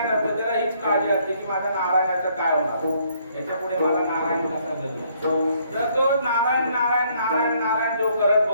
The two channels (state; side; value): inverted; both; correlation -0.67